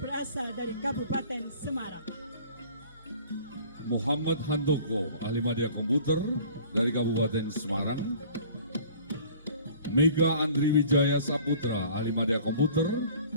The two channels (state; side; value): inverted; both; correlation -0.49